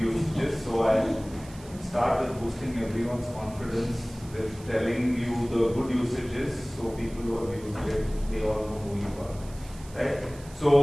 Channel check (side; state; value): right; noise; hiss, 21 dB below the sound